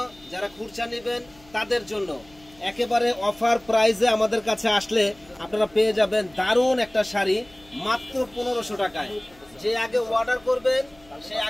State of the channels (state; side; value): noise; left; hum, 28 dB below the sound